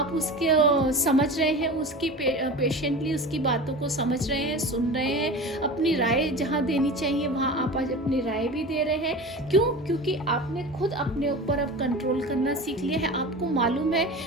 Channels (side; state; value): both; normal; correlation 0.32